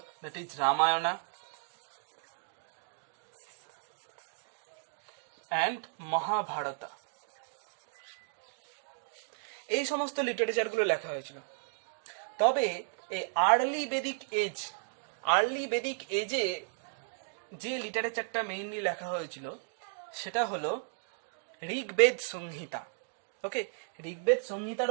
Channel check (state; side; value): silent; left; digital silence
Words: that is Ramayana and Mahabharata. এই সমস্ত লিটারেচারগুলো লেখা হয়েছিল। তবে এই আর্লি বেদিক এজে যে লিটারেচারটা মেইনলি লেখা হয়েছিল সেটা হলো ঋগ্বেদ সংহিতা। ওকে, ঋগ্বেদ